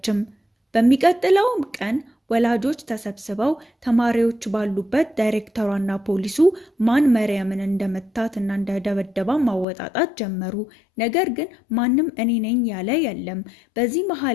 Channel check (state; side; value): drops out; right; at 9.7 s